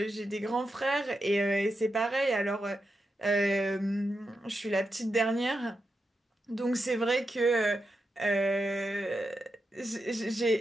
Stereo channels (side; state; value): both; normal; correlation 0.87